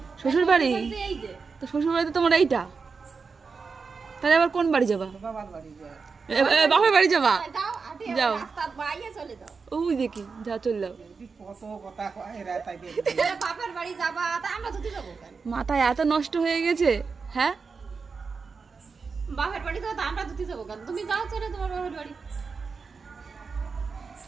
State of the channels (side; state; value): left; quieter; 5.0 dB